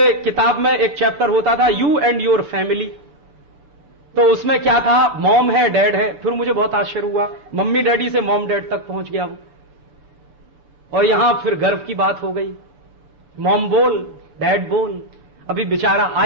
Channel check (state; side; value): late; left; 6.7 ms